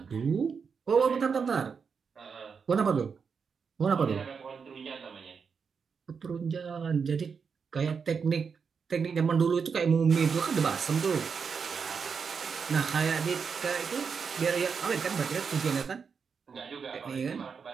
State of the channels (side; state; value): left; quieter; 5.9 dB